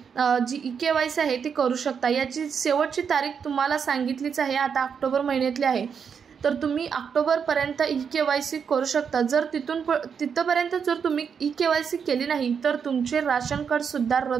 जी ई-KYC आहे ती करू शकता। याची शेवटची तारीख तुम्हाला सांगितलीच आहे, आता ऑक्टोबर महिन्यातली आहे। तर तुम्ही ऑक्टोबरपर्यंत ई-KYC करू शकता। जर तिथपर्यंत जर तुम्ही ई-KYC केली नाही तर तुमचे राशन कार्ड सुद्धा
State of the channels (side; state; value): left; quieter; 6.8 dB